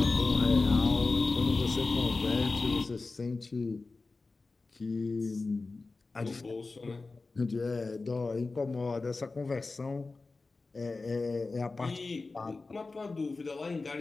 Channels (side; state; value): right; quieter; 3.7 dB